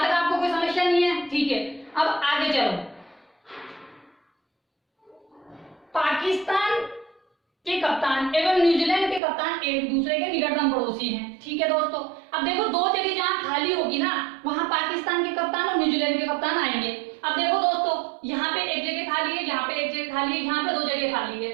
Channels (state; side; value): drops out; left; at 9.2 s